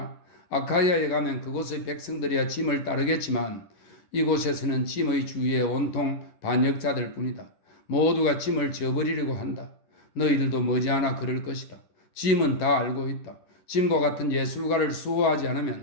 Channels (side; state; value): right; late; 10 ms